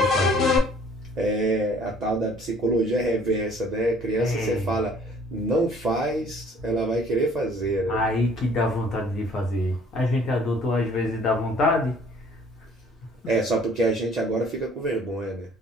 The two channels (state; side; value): normal; both; correlation 0.56